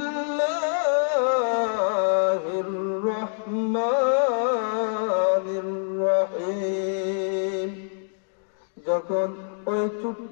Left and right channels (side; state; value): right; silent; digital silence